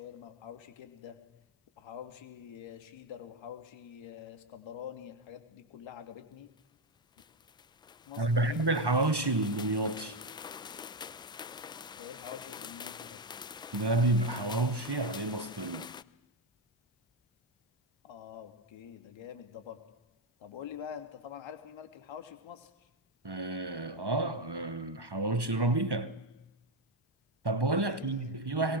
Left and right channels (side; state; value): both; normal; correlation 0.10